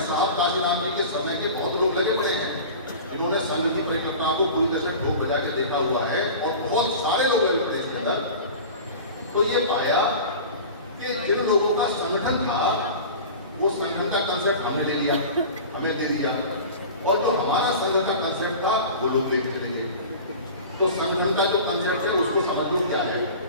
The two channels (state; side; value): inverted; both; correlation -0.36